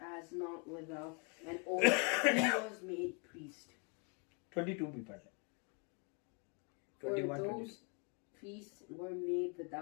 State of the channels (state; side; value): quieter; right; 34.9 dB